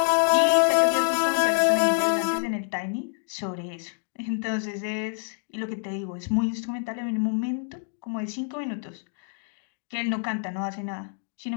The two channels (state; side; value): silent; right; 60 dB below the other